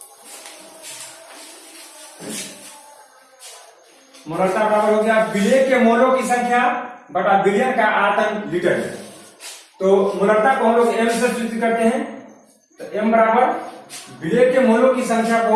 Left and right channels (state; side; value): identical; both; correlation 1.00